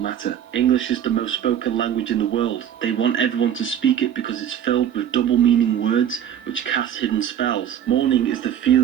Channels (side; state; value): left; quieter; 9.7 dB